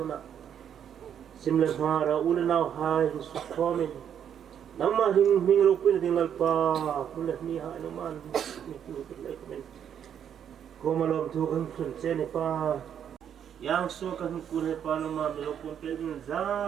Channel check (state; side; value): quieter; left; 8.9 dB